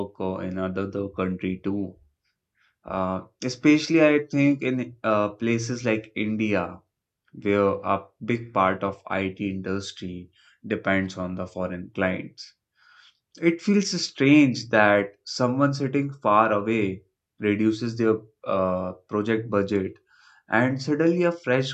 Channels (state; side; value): identical; both; correlation 1.00